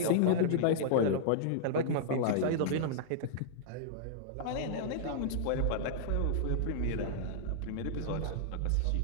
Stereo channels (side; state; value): both; different; correlation -0.02